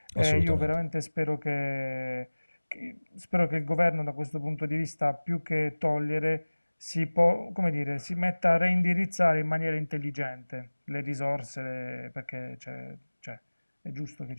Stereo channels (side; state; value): both; inverted; correlation -1.00